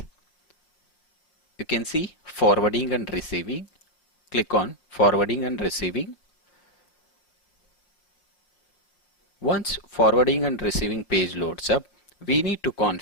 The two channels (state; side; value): late; right; 5.8 ms